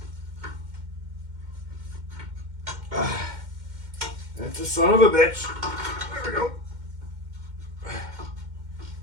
That's a son of a bitch. There we go.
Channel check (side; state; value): left; late; 2.1 ms